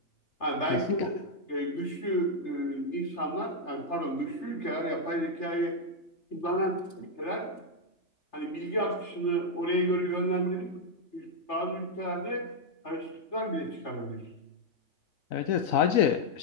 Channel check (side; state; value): right; late; 3.3 ms